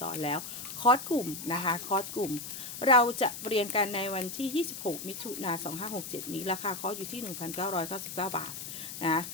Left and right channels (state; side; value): noise; left; hiss, 9 dB below the sound